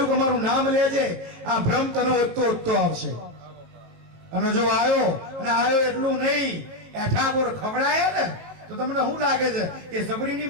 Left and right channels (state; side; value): late; left; 19 ms